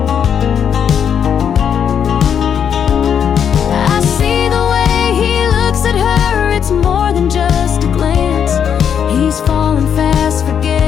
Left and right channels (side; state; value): right; quieter; 8.1 dB